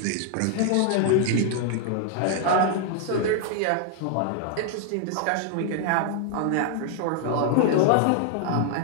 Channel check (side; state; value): both; different; correlation 0.00